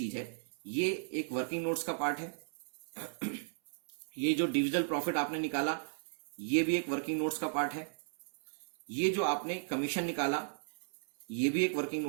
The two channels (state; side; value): silent; left; 54 dB below the other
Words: है ये एक वर्किंग नोट्स का पार्ट है। ये जो डिविजिबल प्रॉफिट आपने निकाला ये भी एक वर्किंग नोट्स का पार्ट है। ये जो आपने कमीशन निकाला ये भी एक वर्किंग